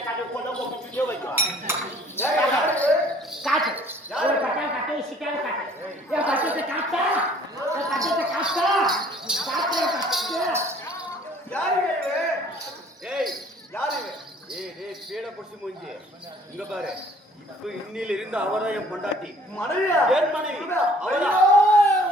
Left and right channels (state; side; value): normal; both; correlation 0.55